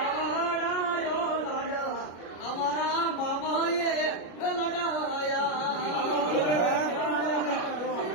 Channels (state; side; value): late; right; 33 ms